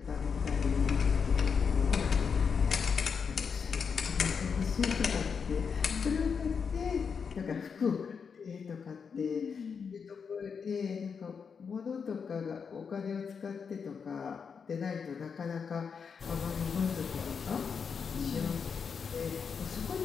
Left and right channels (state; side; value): quieter; right; 6.1 dB